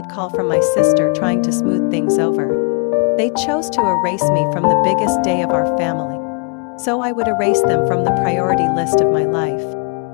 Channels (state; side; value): quieter; right; 34.8 dB